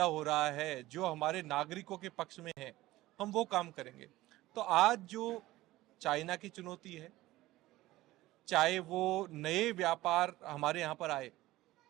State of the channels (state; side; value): quieter; left; 17.2 dB